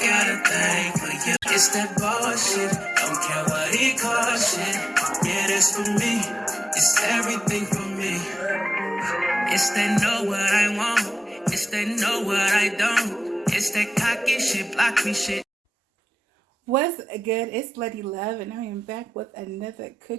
a thing for you. It's that bullshit. Don't care what he calls shit. Yeah, that's for me. It's everything for me. It's that know what I want. It's that know what I don't. It's that cocky shit, block me shit. What's good? It's Lady Love, and I am back with another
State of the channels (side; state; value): both; normal; correlation 0.95